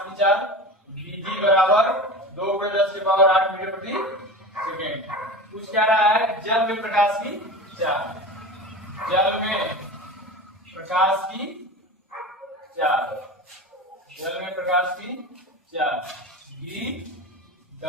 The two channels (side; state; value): both; normal; correlation 0.30